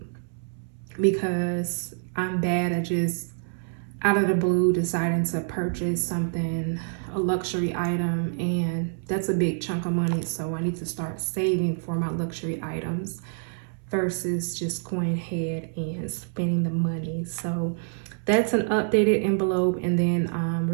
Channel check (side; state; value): left; silent; 60 dB below the other